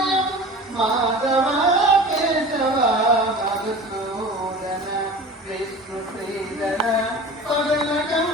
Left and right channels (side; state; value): both; normal; correlation 0.37